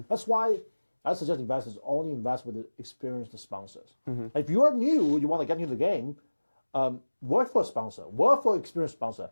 That's why I suggest investors only invest with the experienced sponsors. If you are new, you want to get into the game, work for a sponsor, work for an experienced sponsor,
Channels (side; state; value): both; inverted; correlation -1.00